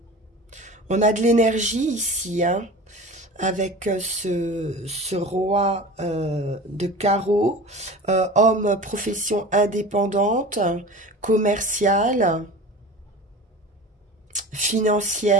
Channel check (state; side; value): normal; both; correlation 0.35